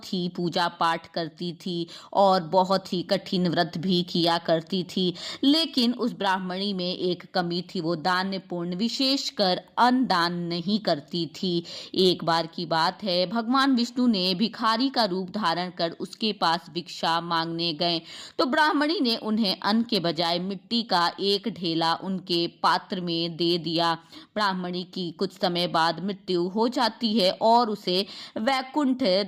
ही पूजा पाठ करती थी और बहुत ही कठिन व्रत भी किया करती थी। लेकिन उस ब्राह्मणी में एक कमी थी, वो दान्यपूर्ण विशेषकर अन्न दान नहीं करती थी। एक बार की बात है, भगवान विष्णु ने भिखारी का रूप धारण कर उसके पास भिक्षा मांगने गए तो ब्राह्मणी ने उन्हें अन्न के बजाय मिट्टी का एक ढेला उनके पात्र में दे दिया। ब्राह्मणी की कुछ समय बाद मृत्यु हो जाती है और उसे वैकुंठ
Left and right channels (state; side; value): identical; both; correlation 1.00